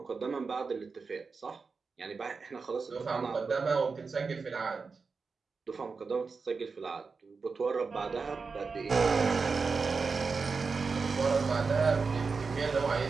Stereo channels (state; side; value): quieter; left; 4.7 dB